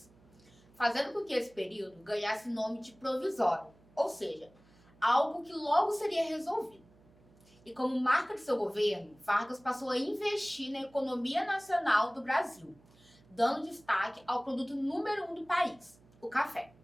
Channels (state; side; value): noise; right; hum, 28 dB below the sound